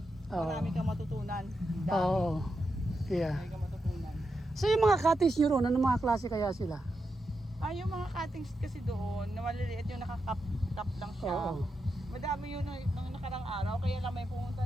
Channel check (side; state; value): both; normal; correlation 0.87